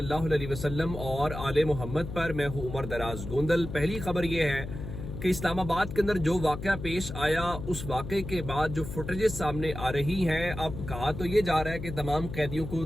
अलैहि वसल्लम और आले मोहम्मद पर। मैं हूँ उमर दराज गोंदल। पहली खबर ये है कि इस्लामाबाद के अंदर जो वाक़या पेश आया, उस वाक़े के बाद जो फुटेजेस सामने आ रही हैं, अब कहा तो ये जा रहा है कि तमाम कैदियों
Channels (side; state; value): left; noise; hum, 8 dB below the sound